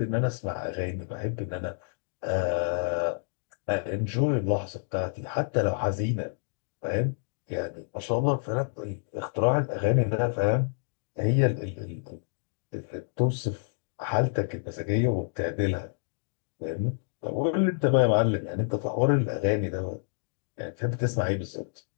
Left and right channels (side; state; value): right; silent; digital silence